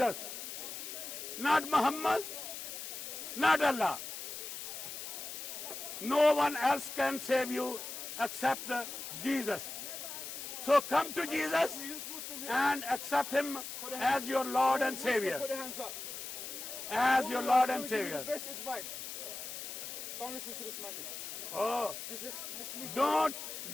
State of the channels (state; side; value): noise; left; hiss, 8 dB below the sound